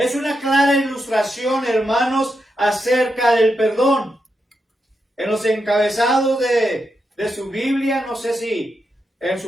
una clara ilustración, hermanos, acerca del perdón. En los encabezados de su Biblia, no sé si en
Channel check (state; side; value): normal; both; correlation 0.85